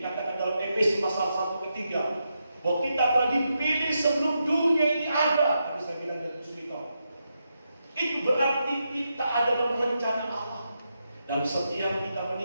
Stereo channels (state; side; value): inverted; both; correlation -0.85